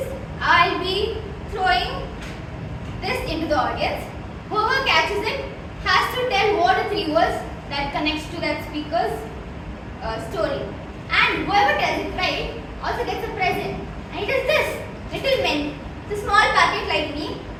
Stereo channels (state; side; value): identical; both; correlation 1.00